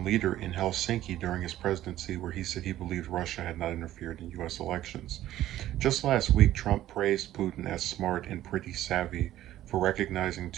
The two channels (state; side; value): quieter; left; 13.6 dB